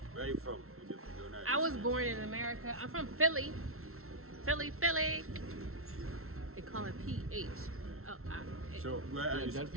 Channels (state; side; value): late; left; 0.62 ms